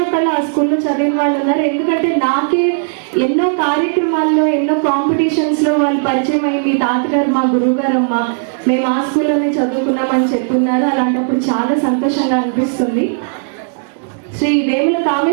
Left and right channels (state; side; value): silent; left; digital silence